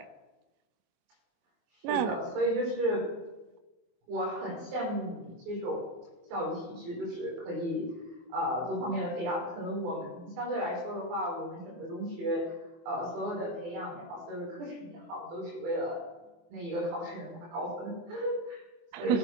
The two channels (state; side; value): late; left; 25 ms